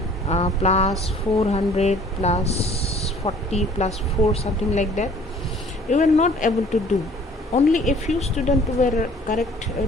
plus 400 plus 40 plus 4, something like that. You were not able to do. Only a few students were correct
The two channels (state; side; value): normal; both; correlation 0.54